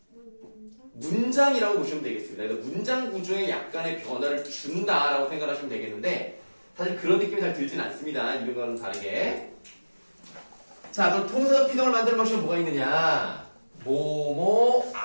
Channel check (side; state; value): both; inverted; correlation -1.00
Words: 문장이라고 보시면 되겠습니다. 그래서 문장 구조에 약간의 변화를 준다라고 생각하시면 되겠는데 사실 그런 느낌이 잘 들진 않습니다. 이런 거는 다르게. 자, 그럼 통사적 피동을 만드는 방식은 뭐가 있느냐? 뭐뭐